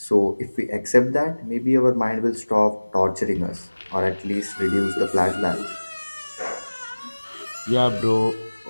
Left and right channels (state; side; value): inverted; both; correlation -1.00